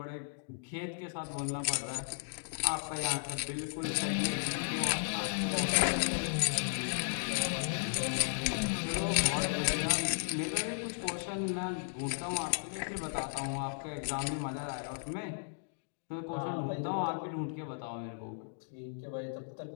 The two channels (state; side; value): silent; right; digital silence